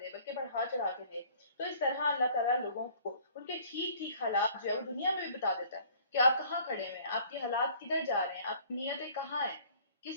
دے، بلکہ بڑھا چڑھا کے دے. تو اس طرح اللہ تعالیٰ لوگوں کو ان کے ٹھیک ٹھیک حالات جو ہے وہ دنیا میں بھی بتا دیتا ہے کہ آپ کہاں کھڑے ہوئے ہیں، آپ کے حالات کدھر جا رہے ہیں، آپ کی نیتیں کہاں ہیں،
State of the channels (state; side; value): inverted; both; correlation -0.54